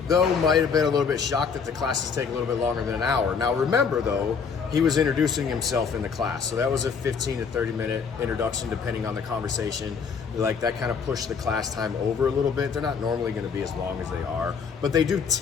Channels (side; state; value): right; quieter; 5.9 dB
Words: though, might have been a little bit shocked that the classes take a little bit longer than an hour. Now remember, though, he was introducing himself in the class. So that was a 15 to 30 minute introduction, depending on the conversation. Like, that kind of pushed the class time over a little bit. They're not normally gonna be as long as they are, but they do